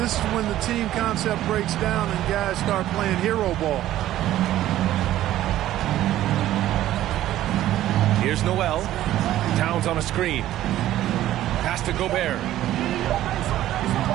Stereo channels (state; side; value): quieter; left; 13.6 dB